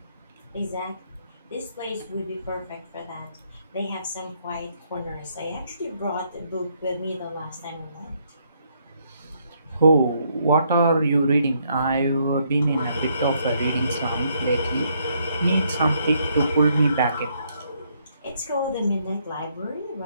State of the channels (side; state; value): both; inverted; correlation -0.72